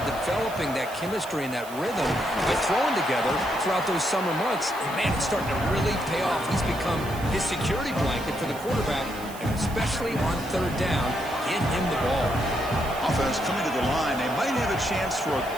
developing that chemistry and that rhythm by throwing together throughout those summer months. And man, it's starting to really pay off. He's become his security blanket for the quarterback, and especially on third down, get him the ball. Offense coming to the line. They might have a chance for a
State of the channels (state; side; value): noise; right; hiss, 17 dB below the sound